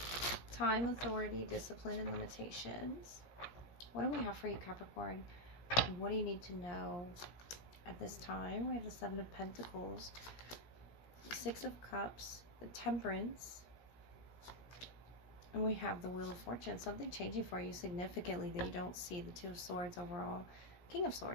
time, authority, discipline, and limitations. What do we have for you, Capricorn? And what do you need to know at this time? We have the Seven of Pentacles, the Six of Cups, the Temperance, and we have the Wheel of Fortune. Something changing for you significantly that you don't see. The Two of Swords overall, King of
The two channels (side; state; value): right; late; 17 ms